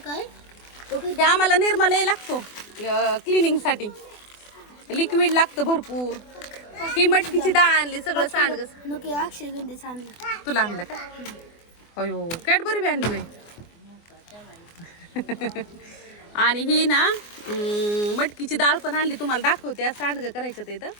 काय हे आम्हाला निर्मला लागतो क्लिनिंग साठी. लिक्विड लागतं भरपूर. ही मटकीची डाळ आणली. सगळं सांडग. नको अक्षय गंधेच आणलं. तुला आणलं का? अयो कॅडबरी बी आणली बाई. आणि ही ना मटकीची डाळ पण आणली. तुम्हाला दाखवते. सांडगं करायचं ते इथं.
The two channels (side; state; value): right; late; 24 ms